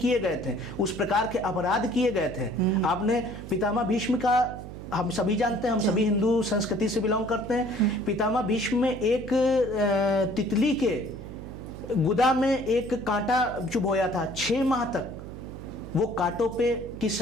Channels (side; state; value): right; noise; hum, 11 dB below the sound